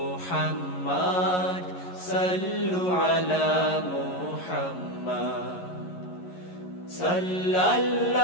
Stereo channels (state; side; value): late; right; 11 ms